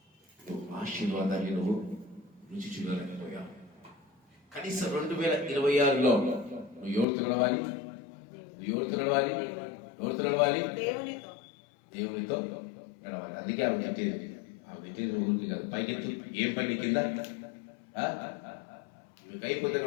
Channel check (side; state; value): right; drops out; at 7.1 s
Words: నువ్వు ఆశీర్వాదాన్ని నువ్వు రుచి చూడలేకపోయావు. కనీసం 2026లో నువ్వు ఎవరితో నడవాలి, నువ్వు ఎవరితో నడవాలి, ఎవరితో నడవాలి, దేవునితో నడవాలి. అందుకే ఆమె తిట్టేది ఊరికి కాదు, పైకెత్తు. ఏం పని కింద మీకు అయిపోతే